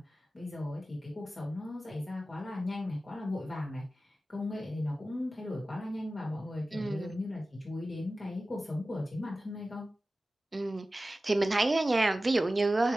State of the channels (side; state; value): both; normal; correlation 0.95